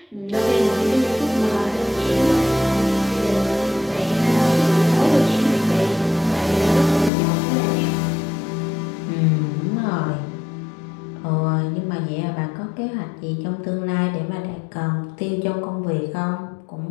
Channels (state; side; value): drops out; right; at 7.1 s